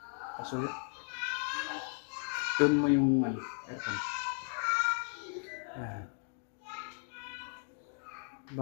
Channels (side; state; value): right; silent; 54 dB below the other